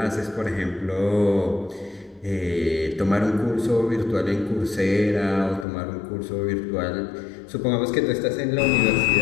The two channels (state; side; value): drops out; right; at 5.7 s